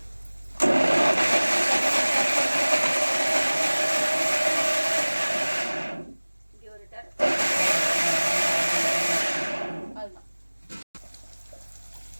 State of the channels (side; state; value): both; inverted; correlation -1.00